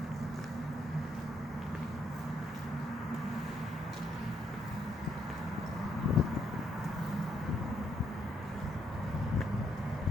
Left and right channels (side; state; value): both; normal; correlation 0.74